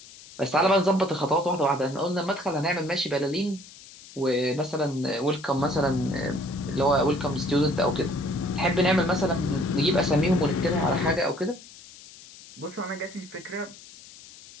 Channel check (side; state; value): left; noise; hiss, 19 dB below the sound